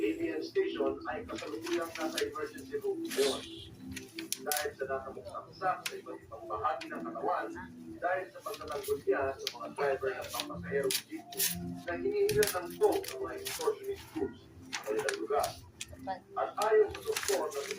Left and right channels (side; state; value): both; identical; correlation 1.00